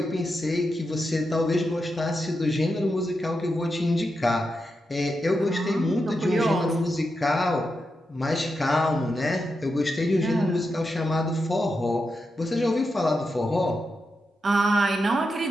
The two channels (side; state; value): both; normal; correlation 0.87